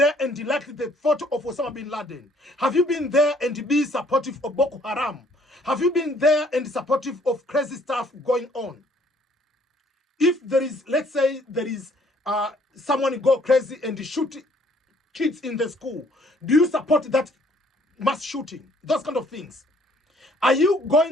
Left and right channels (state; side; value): normal; both; correlation 0.62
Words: and liked the photo of Osama bin Laden? Have you been there and be supportive of Boko Haram? Have you been there and supportive of crazy stuff going on? If there is, let's say there is someone go crazy and shoot kids in the school, do you support that mass shooting? Those kind of things. Are you